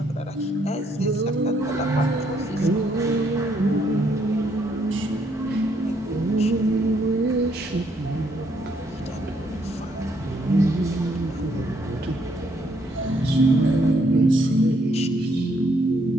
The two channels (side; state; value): both; normal; correlation 0.71